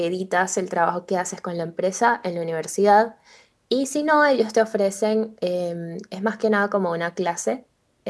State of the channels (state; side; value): identical; both; correlation 1.00